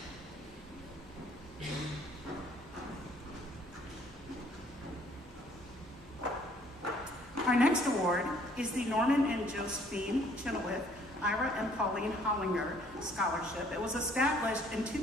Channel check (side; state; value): both; normal; correlation 0.61